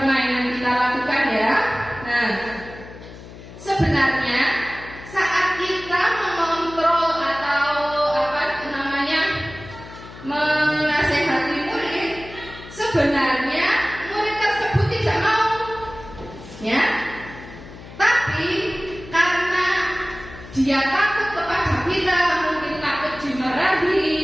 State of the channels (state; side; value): noise; left; hum, 16 dB below the sound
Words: kita lakukan ya. Nah, sebenarnya saat kita mengontrol atau menasehati murid, sebenarnya murid tersebut tidak mau, ya. Tapi karena dia takut kepada kita, mungkin takut dimarahi